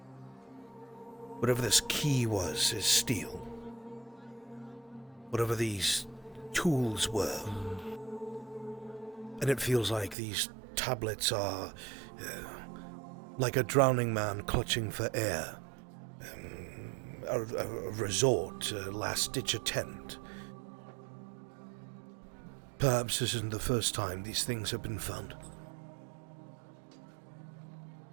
Whatever this key was is steel. Whatever these tools were. And it feels like these tablets are like a drowning man clutching for air. A resort, a last-ditch attempt. Perhaps this isn't the first time these things have been found.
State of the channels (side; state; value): left; drops out; at 10.2 s